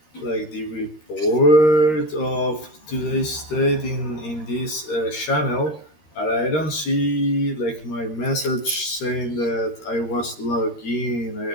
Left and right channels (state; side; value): late; right; 13 ms